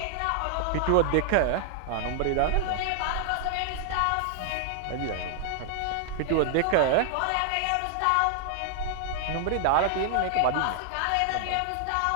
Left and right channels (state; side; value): different; both; correlation 0.00